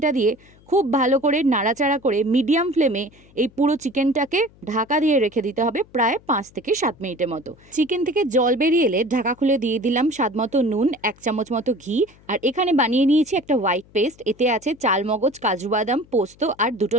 দিয়ে খুব ভালো করে নাড়াচাড়া করে মিডিয়াম ফ্লেমে এই পুরো চিকেনটাকে ঢাকা দিয়ে রেখে দিতে হবে প্রায় 5 থেকে 7 মিনিটের মতো। চিকেন থেকে জল বেরিয়ে এলে ঢাকা খুলে দিয়ে দিলাম স্বাদ মতো নুন, 1 চামচ মতো ঘি। আর এখানে বানিয়ে নিয়েছি একটা হোয়াইট পেস্ট। এতে আছে চালমগজ, কাজু বাদাম, পোস্ত আর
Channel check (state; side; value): noise; left; hum, 27 dB below the sound